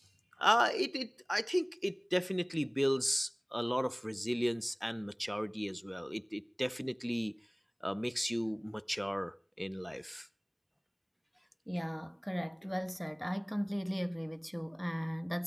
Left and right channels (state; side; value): identical; both; correlation 1.00